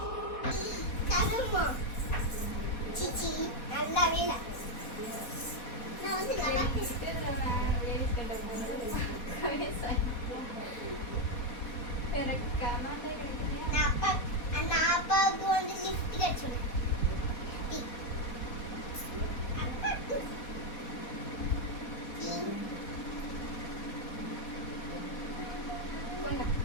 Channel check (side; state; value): right; late; 4.2 ms